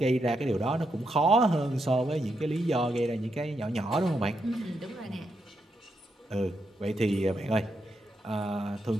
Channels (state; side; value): normal; both; correlation 0.82